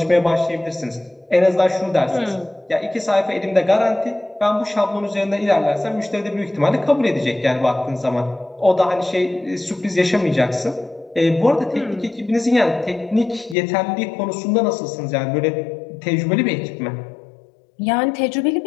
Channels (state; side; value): drops out; right; at 13.6 s